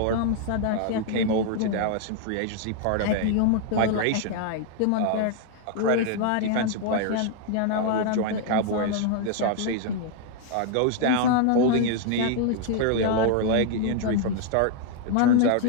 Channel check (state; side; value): different; both; correlation 0.00